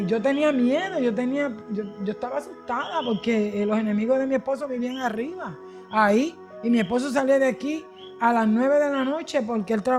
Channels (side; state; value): both; identical; correlation 1.00